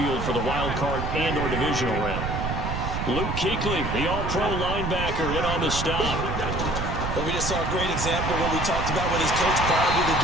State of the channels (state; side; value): noise; right; rumble, 3 dB below the sound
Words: for the wild card and or divisional round. Luke Kuechly, the all-pro linebacker, in on the stop. But we just saw a great example of what we talked about with his coach prior to the